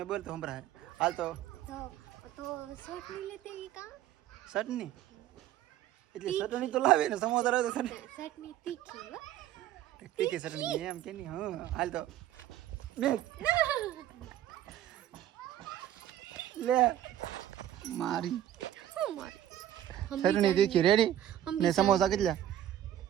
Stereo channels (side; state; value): left; quieter; 11.9 dB